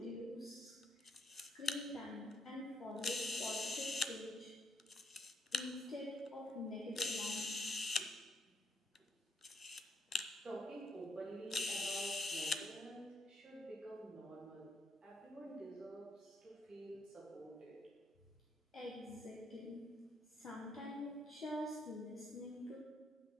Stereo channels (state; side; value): normal; both; correlation 0.75